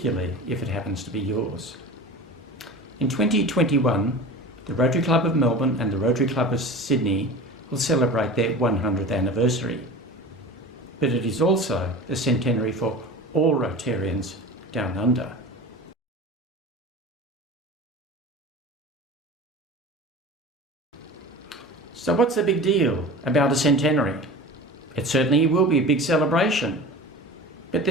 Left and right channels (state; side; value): normal; both; correlation 0.35